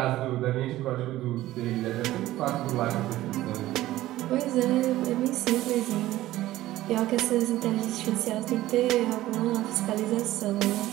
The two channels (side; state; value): left; quieter; 15.6 dB